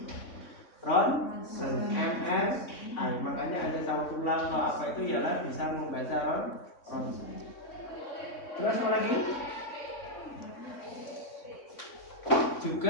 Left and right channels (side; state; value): right; late; 3.6 ms